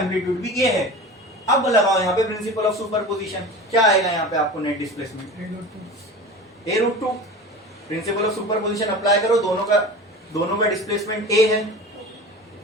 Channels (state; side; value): normal; both; correlation 0.34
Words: भी ए है। अब लगाओ यहाँ पे प्रिंसिपल ऑफ सुपरपोजिशन, क्या आएगा यहाँ पे आपको net displacement? a√2। Principle of superposition apply करो, दोनों का डिस्प्लेसमेंट ए है।